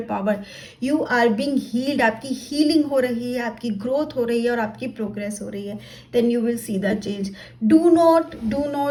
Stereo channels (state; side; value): identical; both; correlation 1.00